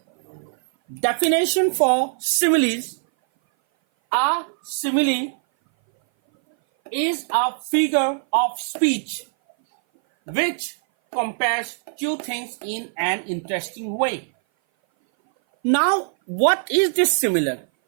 definition for similes. A simile is a figure of speech which compares two things in an interesting way. Now what is this similar?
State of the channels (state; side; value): silent; left; 58 dB below the other